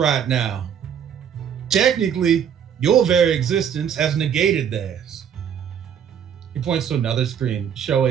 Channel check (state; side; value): quieter; left; 8.3 dB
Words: now. Technically, your very existence has negated theirs. He points to another screen